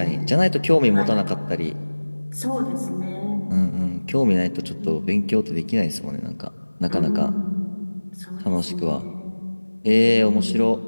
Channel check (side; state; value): both; inverted; correlation -1.00